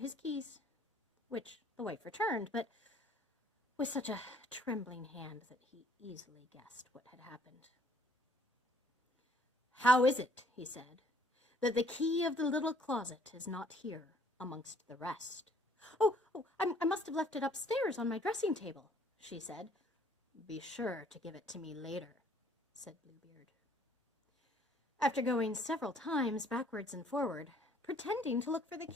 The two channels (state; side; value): normal; both; correlation 0.61